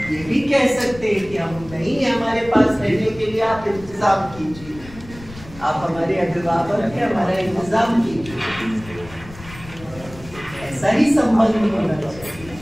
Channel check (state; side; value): noise; left; rumble, 17 dB below the sound